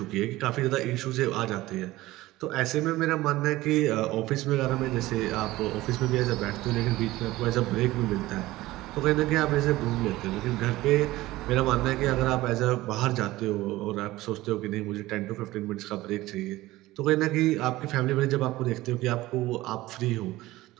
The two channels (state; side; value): quieter; left; 17.7 dB